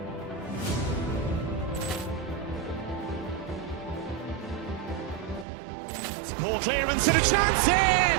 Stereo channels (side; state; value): left; drops out; at 5.5 s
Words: Ball clearance and a chance here,